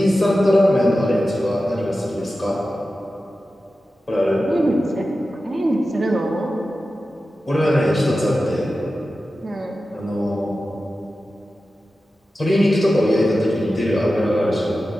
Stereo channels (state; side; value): normal; both; correlation 0.93